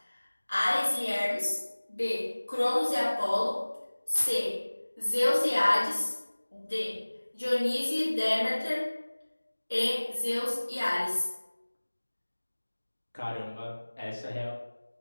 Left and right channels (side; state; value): both; inverted; correlation -1.00